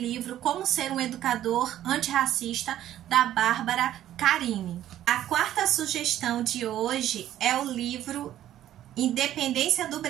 Como Ser um Educador Antirracista, da Bárbara Carini. A quarta sugestão de hoje é o livro Independência do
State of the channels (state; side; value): quieter; left; 12.3 dB